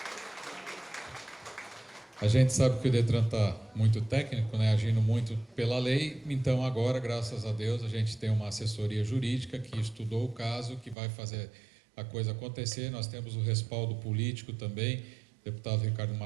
A gente sabe que o Detran está muito técnico, né, agindo muito pela lei, então agora, graças a Deus, a gente tem uma assessoria jurídica que estudou o caso, que vai fazer a coisa acontecer. Nós temos o respaldo político também, deputado Ricardo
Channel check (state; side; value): drops out; left; at 11.0 s